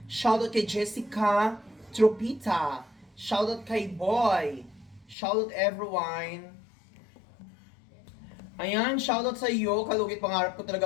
Shout out kay Jessica Tropita. Shout out kay Boy. Shoutout everyone. Ayan, shoutout sa iyo. Kalugit, pangarap ko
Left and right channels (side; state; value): right; drops out; at 5.2 s